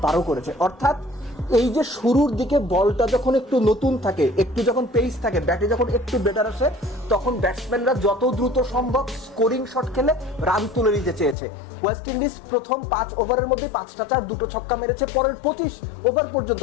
12 করেছে। অর্থাৎ এই যে শুরুর দিকে বলটা যখন একটু নতুন থাকে, একটু যখন পেস থাকে, ব্যাটে যখন একটু বেটার আসে, তখন ব্যাটসম্যানরা যত দ্রুত সম্ভব স্কোরিং শট খেলে রান তুলে নিতে চেয়েছে। ওয়েস্ট ইন্ডিজ প্রথম 5 ওভারের মধ্যে 5টা 4, 2টো ছক্কা মেরেছে। পরের 25 ওভার পর্যন্ত,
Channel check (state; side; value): drops out; right; at 11.4 s